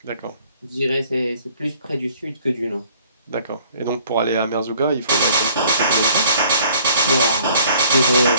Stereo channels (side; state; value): both; inverted; correlation -0.58